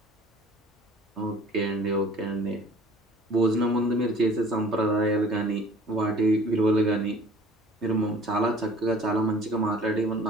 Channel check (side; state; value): both; normal; correlation 0.49